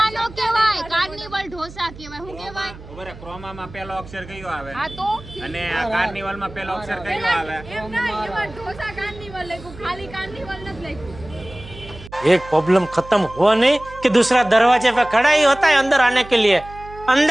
કહેવાય, કાર્નિવલ ઢોસા કહેવાય. શું કહેવાય? બરાબર, ક્રોમામાં પહેલો અક્ષર કયો આવે હા તો અને આ કાર્નિવલમાં પહેલો અક્ષર કયો આવે? ઢોસા કાર્નિવલ લખ્યું, ખાલી કાર્નિવલ નથી લખ્યું. एक प्रॉब्लम खत्म हुआ नहीं कि दूसरा दरवाजे पे खड़ा ही होता है अंदर आने के लिए.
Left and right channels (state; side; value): noise; right; hum, 17 dB below the sound